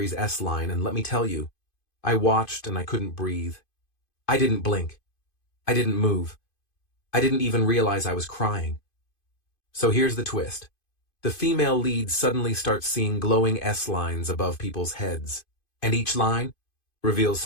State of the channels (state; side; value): late; right; 2.5 ms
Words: S-Line, and let me tell you, I watched and I couldn't breathe. I didn't blink. I didn't move. I didn't even realize I was crying. So here's the twist. The female lead suddenly starts seeing glowing S-lines above people's heads, and each line reveals